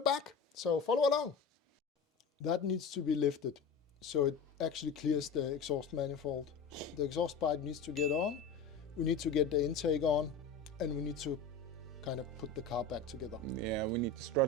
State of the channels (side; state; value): right; quieter; 4.5 dB